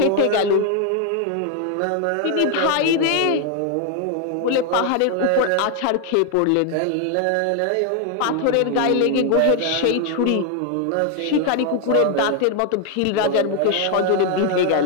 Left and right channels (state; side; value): different; both; correlation 0.00